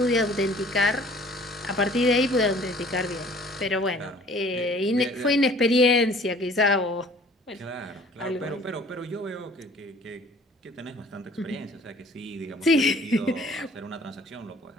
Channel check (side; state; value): both; normal; correlation 0.51